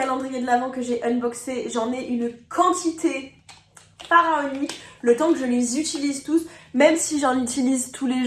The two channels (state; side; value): identical; both; correlation 1.00